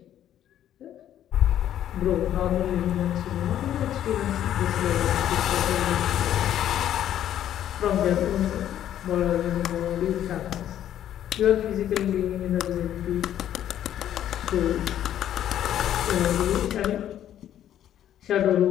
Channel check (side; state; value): right; quieter; 11.2 dB